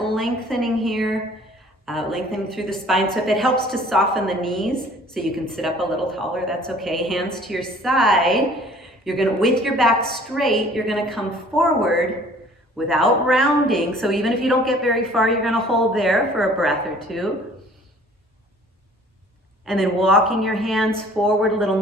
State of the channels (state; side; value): normal; both; correlation 0.52